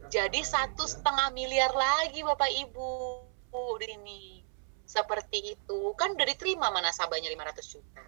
Jadi 1,5 miliar lagi Bapak Ibu di sini. Seperti itu. Kan udah diterima mana nasabahnya 500 juta.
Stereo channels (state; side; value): silent; left; 56 dB below the other